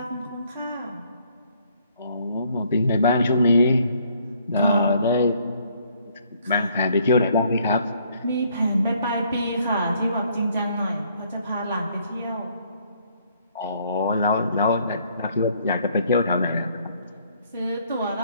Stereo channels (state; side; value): inverted; both; correlation -0.65